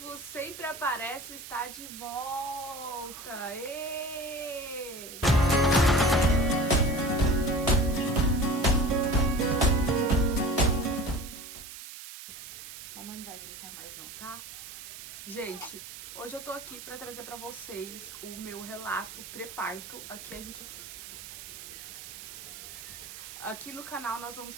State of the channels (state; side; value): noise; right; hiss, 12 dB below the sound